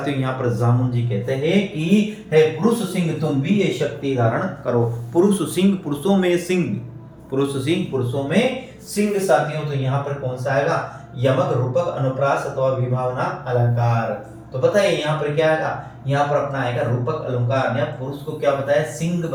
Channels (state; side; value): identical; both; correlation 1.00